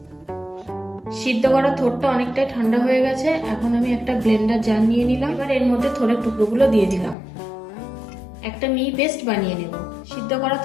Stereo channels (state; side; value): drops out; right; at 7.2 s